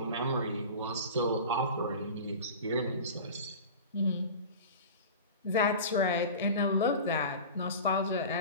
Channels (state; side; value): inverted; both; correlation -0.34